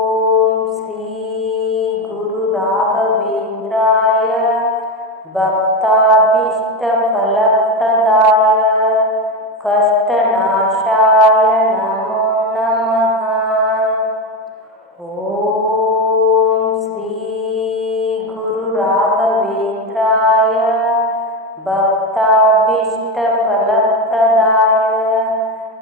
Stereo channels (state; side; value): normal; both; correlation 0.16